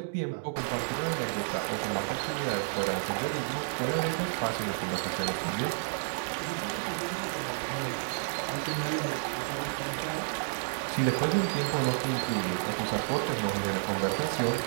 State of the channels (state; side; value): silent; left; digital silence